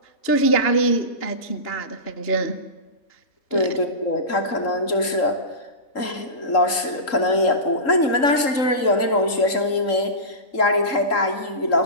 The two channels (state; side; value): late; right; 3.7 ms